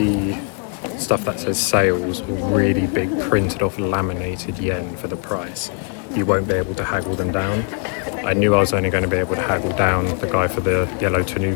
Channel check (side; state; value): right; quieter; 39.4 dB